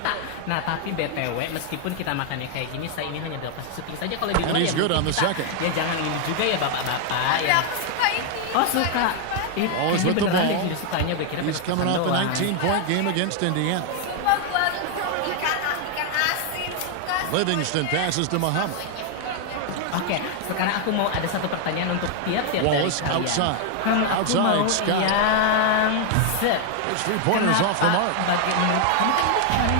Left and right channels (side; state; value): both; different; correlation 0.00